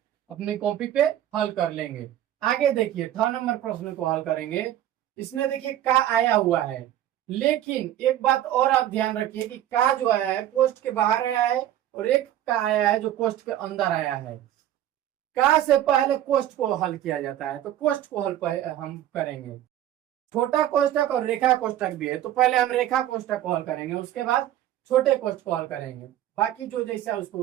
अपनी कॉपी पे हल कर लेंगे। आगे देखिए 6 नंबर प्रश्न को हल करेंगे। इसमें देखिए का आया हुआ है, लेकिन एक बात और आप ध्यान रखिए कि का जो आया है कोष्ठ के बाहर आया है और एक का आया है जो कोष्ठ के अंदर आया है। का से पहले कोष्ठ को हल किया जाता है, तो कोष्ठ को हल हम करेंगे। छोटा कोष्ठक और रेखा कोष्ठक भी है, तो पहले हम रेखा कोष्ठक को हल करेंगे, उसके बाद छोटे कोष्ठ को हल करेंगे। बाकी जो जैसा उसको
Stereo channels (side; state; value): left; quieter; 12.3 dB